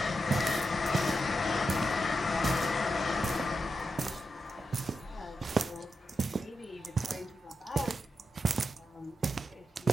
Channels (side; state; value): both; normal; correlation 0.87